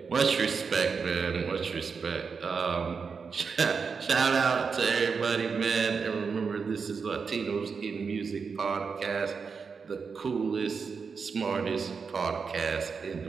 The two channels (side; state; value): left; quieter; 5.5 dB